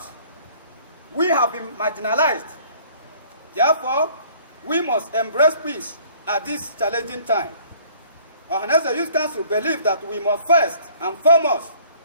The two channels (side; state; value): both; inverted; correlation -0.55